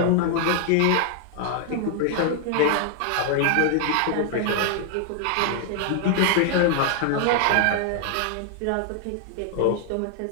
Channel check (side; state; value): both; different; correlation 0.00